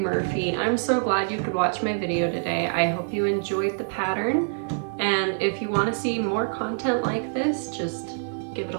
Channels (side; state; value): left; silent; digital silence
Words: I'm so glad you could watch my video today. I hope you enjoyed the pattern, and if you want to see more content like this, just give it